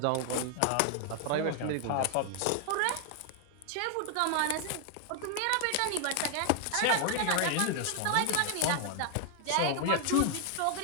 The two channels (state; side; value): different; both; correlation 0.00